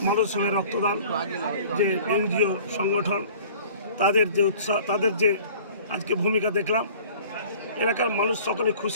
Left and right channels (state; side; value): inverted; both; correlation -0.47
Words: মানব সেবায় রক্তদান যে এনজিও সংগঠন, তাদের যে উৎসাহ, তাদের যে আজকে ভূমিকা দেখলাম, এলাকার মানুষ সকলে